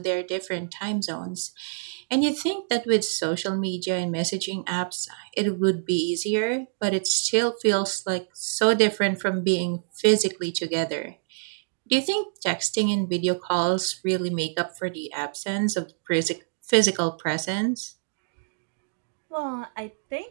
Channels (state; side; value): silent; left; digital silence